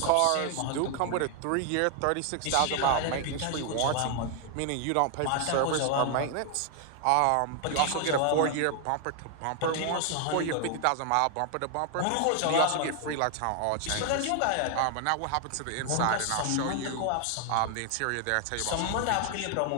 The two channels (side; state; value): both; different; correlation 0.00